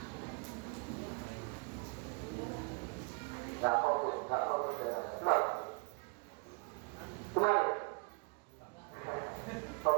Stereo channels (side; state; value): left; quieter; 34.4 dB